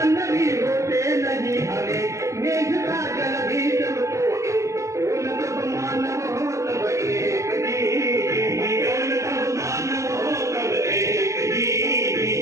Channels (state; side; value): late; left; 0.15 ms